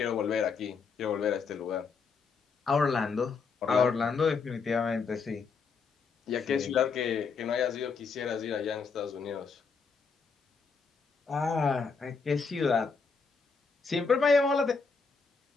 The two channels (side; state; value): right; quieter; 5.1 dB